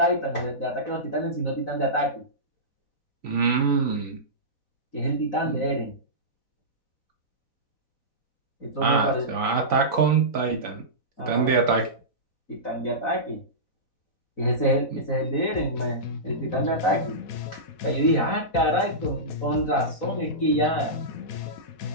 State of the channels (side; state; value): right; late; 4.0 ms